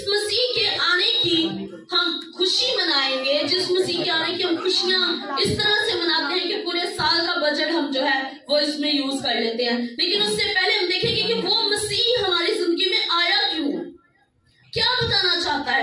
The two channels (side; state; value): both; identical; correlation 1.00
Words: مسیح کے آنے کی ہم خوشی منائیں گے، جس مسیح کے آنے کی ہم خوشیاں اس طرح سے مناتے ہیں کہ پورے سال کا بجٹ ہم جو ہے وہ اس میں یوز کر لیتے ہیں، لیکن اس سے پہلے ہم دیکھیں گے کہ وہ مسیح ہماری زندگی میں آیا کیوں، کیا بتانا چاہتا